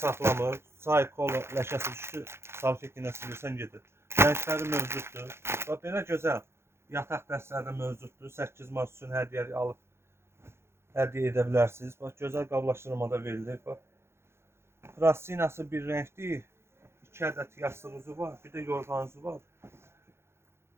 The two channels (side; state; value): left; late; 0.12 ms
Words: saxlamır. Çay, kola ləkəsi düşdü, salfet ilə silirsən gedir. Rəngləri mövcuddur. Və belə gözəl yataq dəstələri mövcuddur. 8 mart üçün hədiyyəli alıb hədiyyə edə bilərsiniz. Bax, gözəl qablaşdırmada verilir. Bax, plastinası bir rəngdir. 2 ədəd yastığınızı var. Bir də yorğanınızı var.